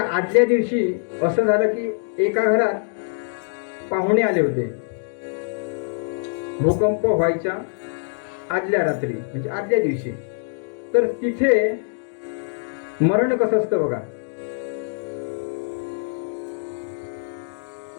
आदल्या दिवशी असं झालं की एका घरात पाहुणे आले होते. भूकंप व्हायच्या आदल्या रात्री म्हणजे आदल्या दिवशी. तर तिथे मरण कसं असतं बघा.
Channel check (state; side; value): silent; right; digital silence